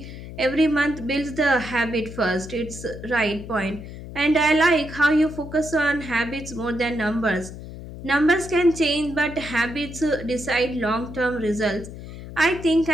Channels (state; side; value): noise; left; hum, 12 dB below the sound